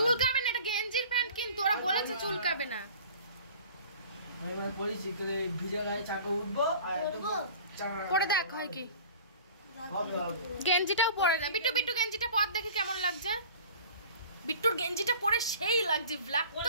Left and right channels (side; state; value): both; inverted; correlation -0.44